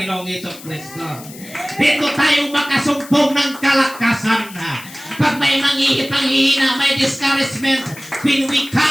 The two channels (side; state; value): left; noise; hiss, 17 dB below the sound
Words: Jesucristo. Dito tayo makasumpong ng kalakasan. Pag may panghihina, may discouragement, when we